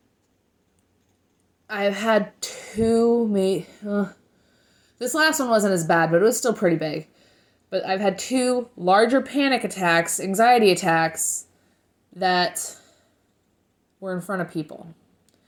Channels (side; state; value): both; identical; correlation 1.00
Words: I've had this last one wasn't as bad, but it was still pretty big. But I've had 2 larger panic attacks, anxiety attacks, that were in front of people.